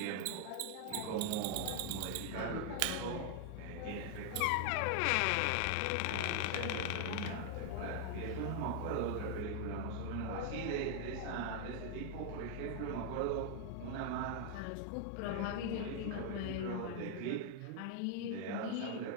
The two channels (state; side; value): different; both; correlation 0.00